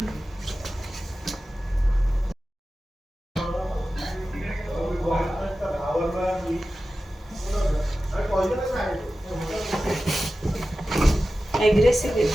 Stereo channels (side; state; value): both; normal; correlation 0.94